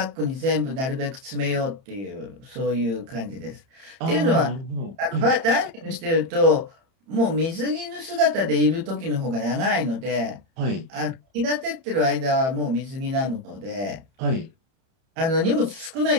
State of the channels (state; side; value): late; left; 30 ms